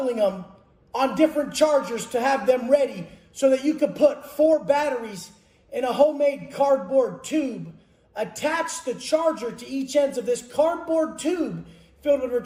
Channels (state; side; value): identical; both; correlation 1.00